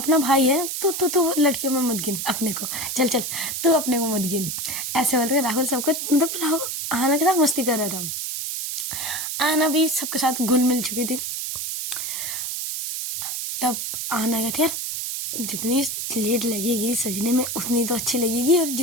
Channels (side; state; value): right; noise; hiss, 4 dB below the sound